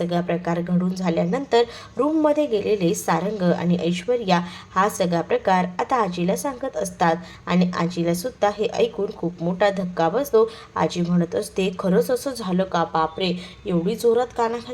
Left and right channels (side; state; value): both; identical; correlation 1.00